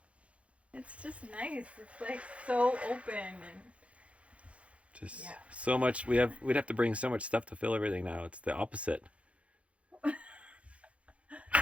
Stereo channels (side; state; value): left; late; 0.063 ms